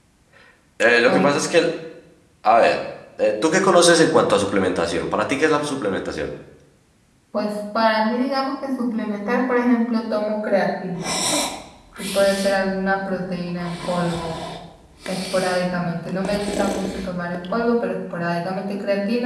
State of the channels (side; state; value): both; identical; correlation 1.00